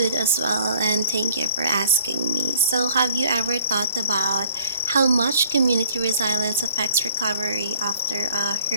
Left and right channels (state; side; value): inverted; both; correlation -0.57